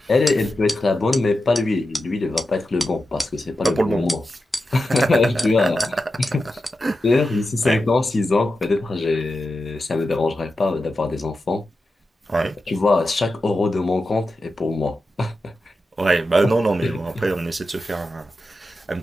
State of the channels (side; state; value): both; normal; correlation 0.90